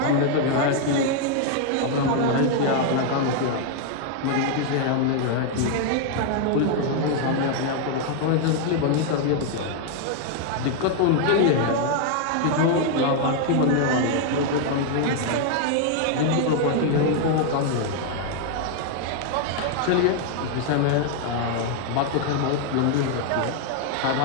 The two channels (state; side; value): different; both; correlation 0.00